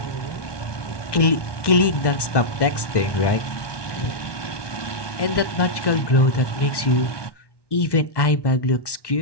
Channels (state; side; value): late; right; 1.1 ms